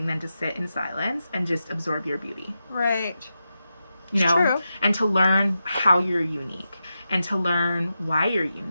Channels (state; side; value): inverted; both; correlation -0.89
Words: than to sit in silence and just absorb your beauty. Right. You know? True. And to learn how you're unique. And to learn why you're